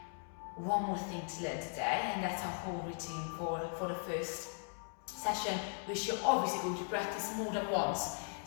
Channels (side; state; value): right; silent; 52 dB below the other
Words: One more thing to learn today, and that's our whole routine for the first session, which you're obviously going to practice more than once.